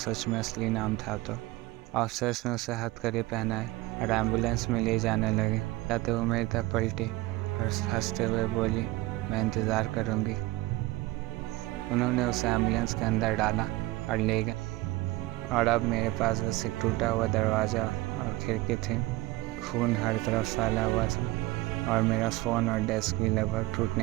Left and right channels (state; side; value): quieter; left; 19.7 dB